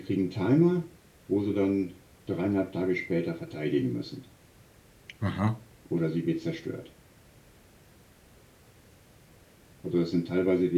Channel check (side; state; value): both; identical; correlation 1.00